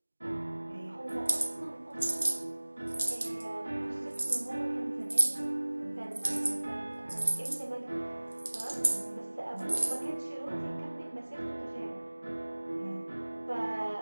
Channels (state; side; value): inverted; both; correlation -1.00